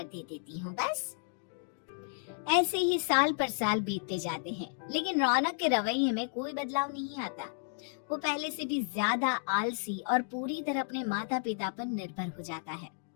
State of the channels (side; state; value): right; silent; digital silence